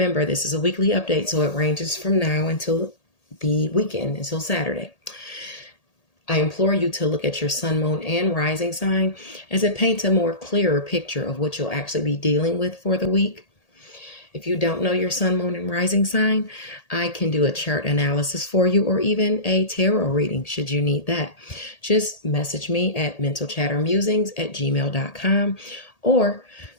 this is a weekly update, so it ranges from now until the weekend, until Saturday. I implore you to look at your sun, moon, and rising sign, as it paints a more clearer picture of what you'll actually be dealing with for the week. If you don't know your sun, moon, and rising sign, I can do a chart analysis for you, or even a tarot reading should you need that. Just message me at mentalchattermusings@gmail.com, or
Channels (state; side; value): late; right; 1.8 ms